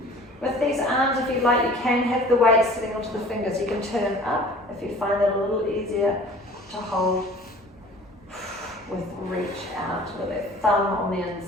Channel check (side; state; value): both; normal; correlation 0.47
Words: With these arms, if you like, you can have the weight sitting onto the fingers. You can turn up if you find that a little easier to hold with reach out with that thumb on the